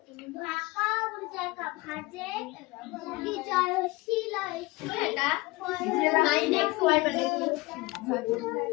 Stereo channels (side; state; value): right; quieter; 22.8 dB